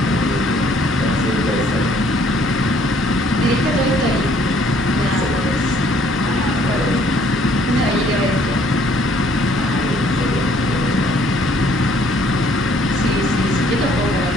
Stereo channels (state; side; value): normal; both; correlation 0.62